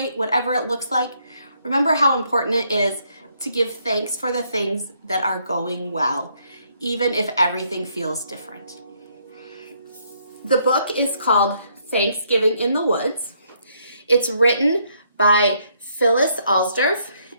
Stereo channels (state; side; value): inverted; both; correlation -0.71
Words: whatever it looks like, remember how important it is to give thanks for the things that are going well, even if everything feels different. The book is called Thanksgiving in the Woods. It's written by Phyllis Alsdorf